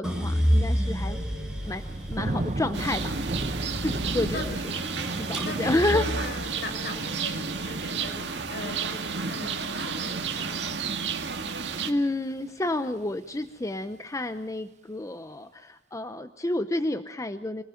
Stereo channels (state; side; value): normal; both; correlation 0.65